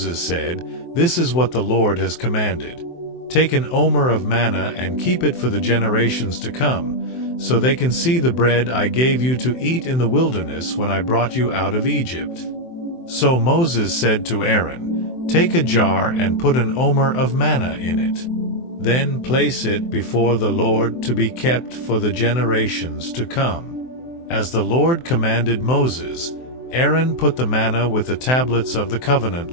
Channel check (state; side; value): late; right; 23 ms